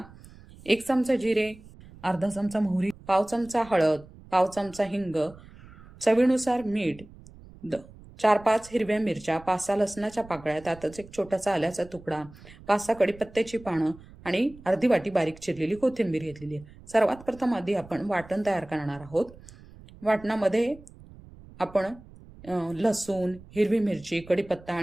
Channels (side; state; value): right; noise; rumble, 20 dB below the sound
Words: 1 चमचा जिरे, अर्धा चमचा मोहरी, पाव चमचा हळद, पाव चमचा हिंग, चवीनुसार मीठ, 4-5 हिरव्या मिरच्या, 5-6 लसणाच्या पाकळ्या, त्यातच एक छोटासा आल्याचा तुकडा, 5-6 कढीपत्त्याची पानं आणि अर्धी वाटी बारीक चिरलेली कोथिंबीर घेतलेली आहे. सर्वात प्रथम आधी आपण वाटण तयार करणार आहोत. वाटणामध्ये आपण लसूण, हिरवी मिरची, कढीपत्ता